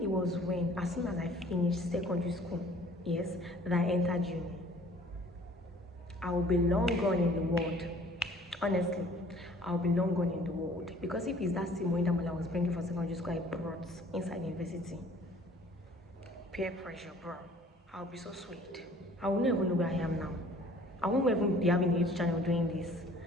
it was when, as soon as I finished secondary school, yes, that I entered uni, I will be long gone in the world. Honestly, I'll be long gone in the world. Because if it's that same way that I was bringing for secondary school, I brought inside university. Peer pressure, bro. I'll be so sweet. I will not even know where I am now. I won't even be having a YouTube channel doing this.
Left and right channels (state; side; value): normal; both; correlation 0.53